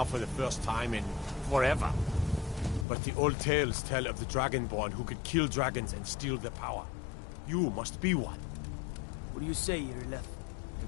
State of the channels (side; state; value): right; drops out; at 2.9 s